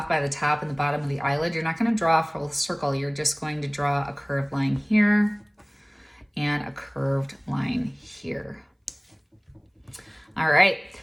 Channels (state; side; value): identical; both; correlation 1.00